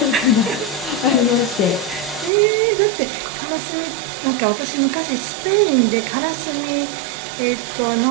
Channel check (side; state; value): left; drops out; at 2.3 s